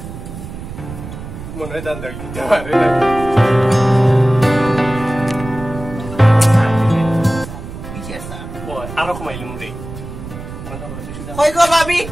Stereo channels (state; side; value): noise; right; rumble, 11 dB below the sound